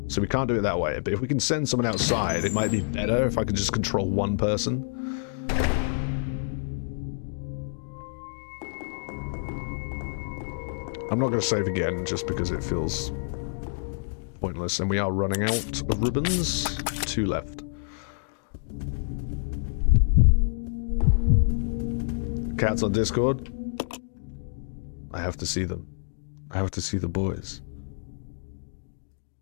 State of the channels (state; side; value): silent; right; digital silence